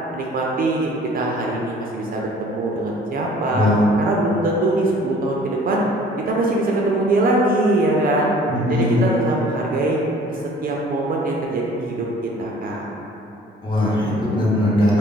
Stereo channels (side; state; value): both; normal; correlation 0.52